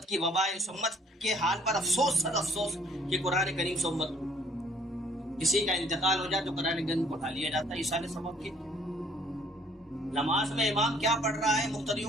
کی وبا ہے. اس امت کے حال پر افسوس, صد افسوس کہ قرآن کریم سے امت کسی کا انتقال ہو جائے تو قرآن کریم کو اٹھا لیا جاتا ہے. یہ سارے سبب کے. نماز میں امام کیا پڑھ رہا ہے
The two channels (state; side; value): normal; both; correlation 0.60